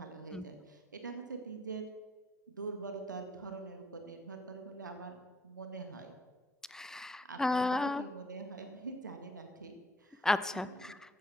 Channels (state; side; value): normal; both; correlation 0.66